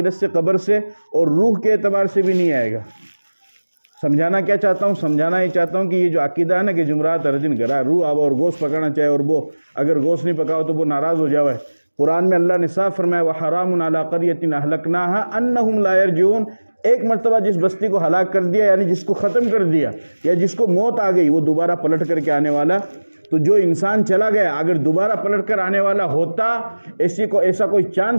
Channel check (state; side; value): inverted; both; correlation -1.00